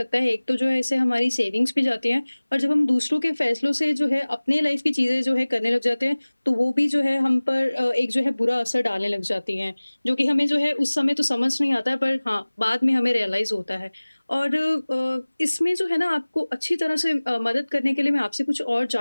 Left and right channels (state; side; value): inverted; both; correlation -1.00